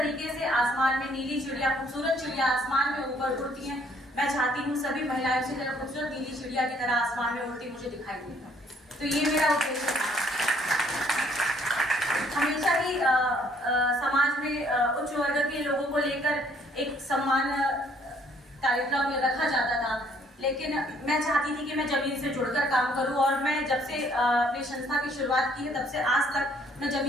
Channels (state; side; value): normal; both; correlation 0.63